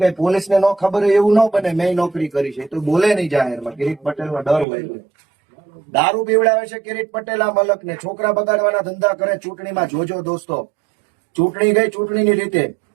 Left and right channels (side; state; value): left; drops out; at 4.7 s